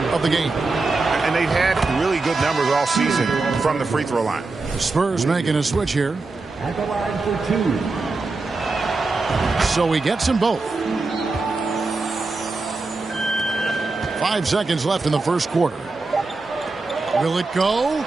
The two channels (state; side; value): quieter; left; 3.6 dB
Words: of the game. And they've had really good numbers all season from the free throw line. The Spurs making a switch here. At the line for 2. So he gets them both. 5 seconds left in the first quarter. Will it go?